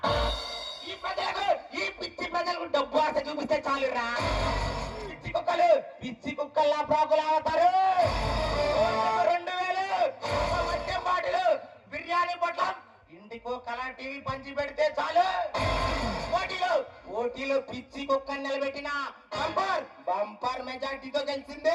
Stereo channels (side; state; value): both; identical; correlation 1.00